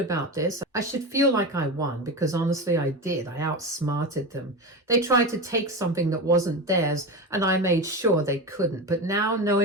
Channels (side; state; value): both; normal; correlation 0.23